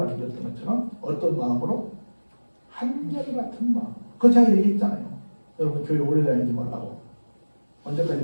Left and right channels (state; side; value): inverted; both; correlation -1.00